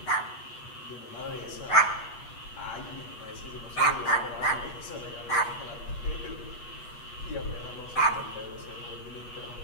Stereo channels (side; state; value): right; late; 8.3 ms